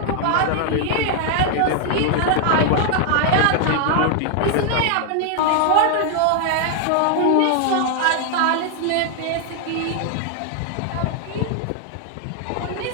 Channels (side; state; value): both; different; correlation 0.00